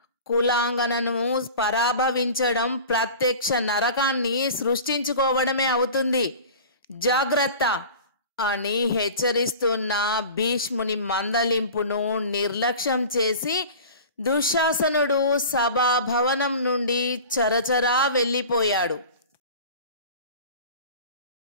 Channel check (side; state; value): both; inverted; correlation -0.38